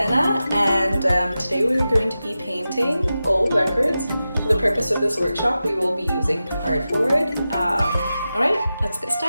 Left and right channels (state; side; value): inverted; both; correlation -0.93